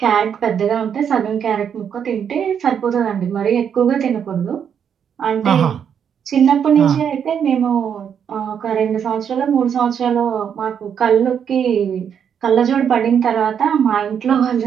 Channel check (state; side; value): quieter; left; 8.0 dB